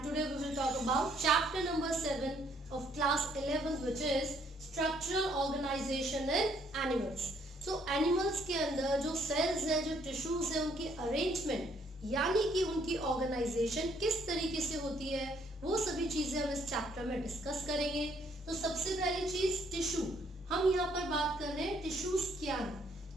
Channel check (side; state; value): both; normal; correlation 0.67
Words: today we will talk about chapter number 7 of class 11 which is structural organization in animals. So animals के अंदर जो cells है, जो tissues है, उनकी arrangement यानी कि उनकी organization किस तरीके से होती है, वो सभी चीजें हम इस चैप्टर में डिस्कस करेंगे. तो सबसे पहली चीज टिश्यू. हम यहाँ पर बात कर रहे हैं टिश्यूज क्या है.